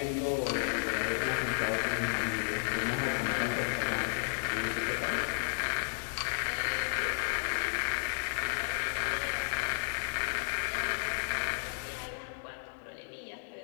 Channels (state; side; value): silent; right; digital silence